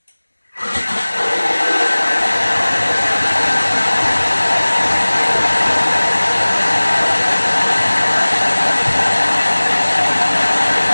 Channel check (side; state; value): both; inverted; correlation -1.00